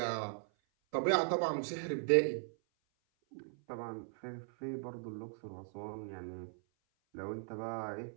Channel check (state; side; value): silent; left; 52 dB below the other